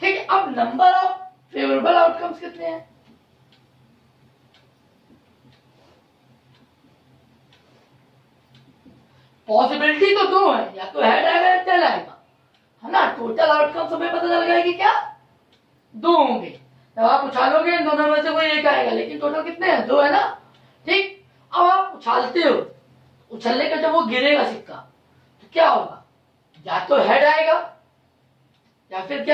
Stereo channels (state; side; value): identical; both; correlation 1.00